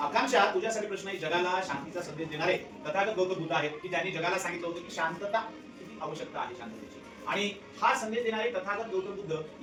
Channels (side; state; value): both; identical; correlation 1.00